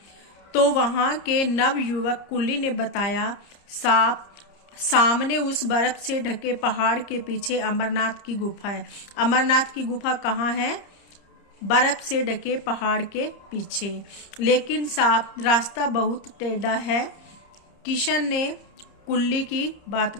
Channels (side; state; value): right; late; 30 ms